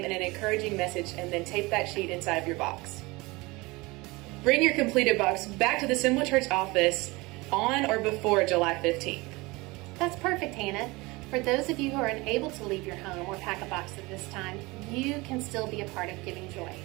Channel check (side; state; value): left; quieter; 23.3 dB